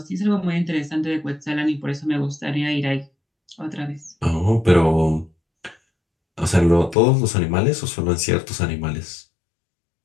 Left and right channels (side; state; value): right; drops out; at 7.0 s